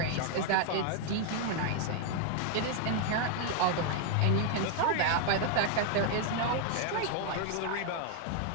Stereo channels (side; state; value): both; different; correlation 0.00